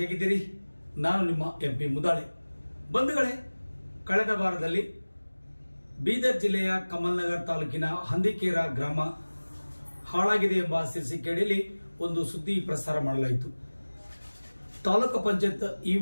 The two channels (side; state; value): both; inverted; correlation -1.00